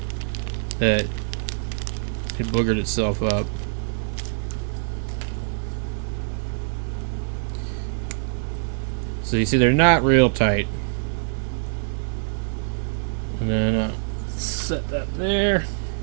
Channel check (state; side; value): silent; left; 62 dB below the other